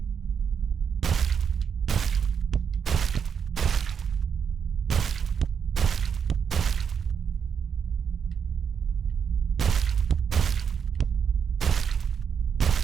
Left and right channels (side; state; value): left; quieter; 7.1 dB